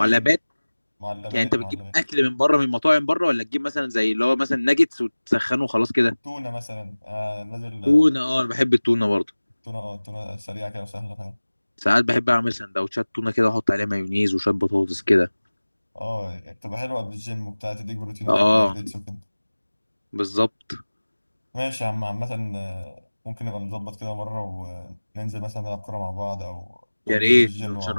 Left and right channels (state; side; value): inverted; both; correlation -1.00